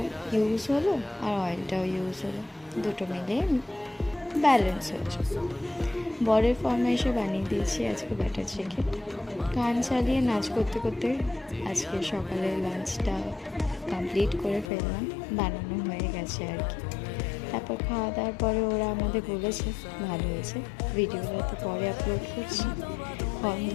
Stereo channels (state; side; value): drops out; right; at 14.7 s